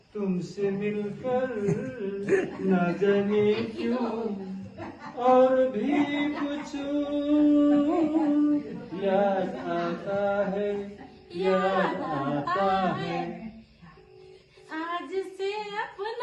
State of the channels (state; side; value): identical; both; correlation 1.00